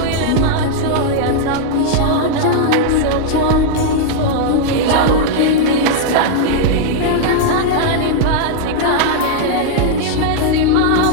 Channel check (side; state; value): both; different; correlation -0.01